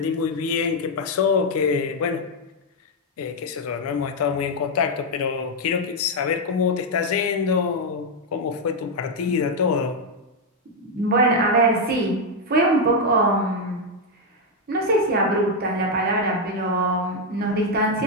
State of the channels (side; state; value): both; normal; correlation 0.01